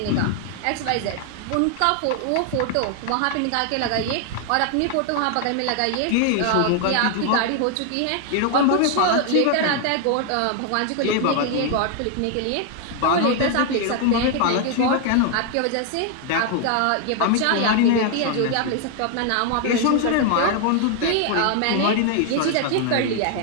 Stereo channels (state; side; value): different; both; correlation 0.00